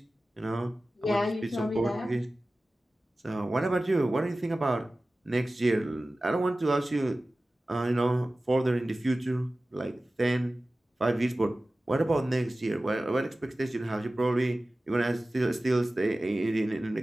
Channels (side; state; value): both; normal; correlation 0.96